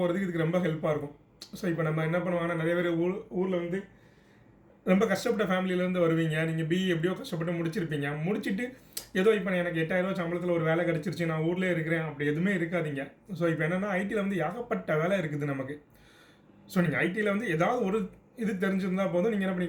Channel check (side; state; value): both; identical; correlation 1.00